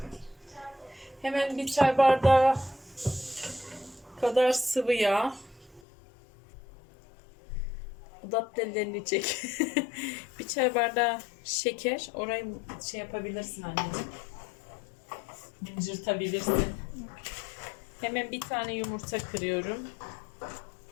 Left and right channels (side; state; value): right; drops out; at 5.8 s